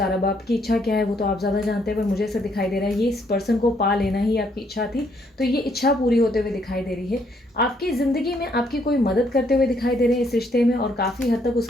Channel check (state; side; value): normal; both; correlation 0.70